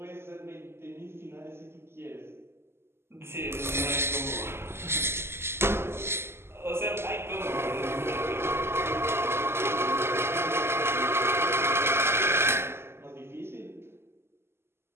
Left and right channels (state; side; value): late; left; 0.12 ms